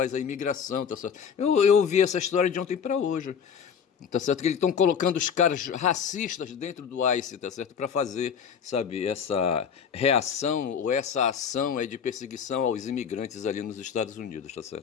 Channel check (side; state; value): right; quieter; 7.2 dB